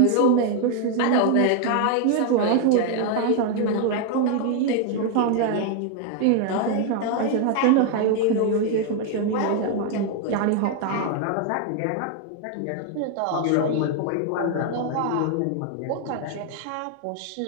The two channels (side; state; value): both; different; correlation 0.01